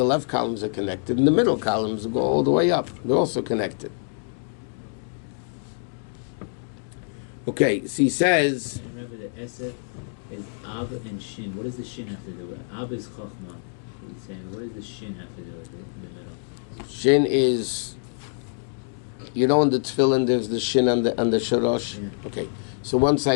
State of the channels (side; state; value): right; silent; 60 dB below the other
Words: left columns are connected, and the middle columns go all the way up. They're also connected. Okay, so he says... Remember the Esef is Ab and Shin. What does the Shin have to do with it? Ab is Chochmah. He's saying, what does the Shin have to do with it in the middle? Shin is... You know in the tefillin there's the Shin and the Shorosh? Yeah. Okay. So one